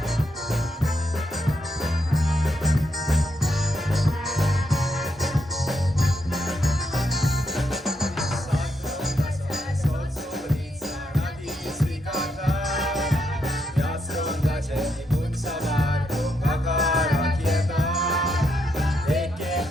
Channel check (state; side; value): normal; both; correlation 0.79